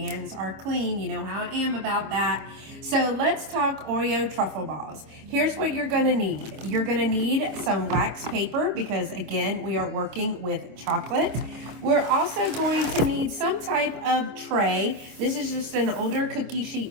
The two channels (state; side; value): late; left; 26 ms